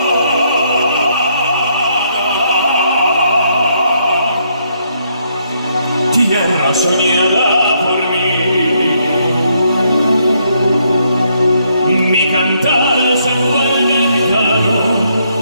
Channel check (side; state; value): both; inverted; correlation -0.73